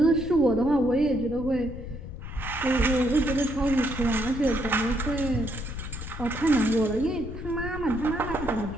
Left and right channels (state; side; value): noise; left; rumble, 10 dB below the sound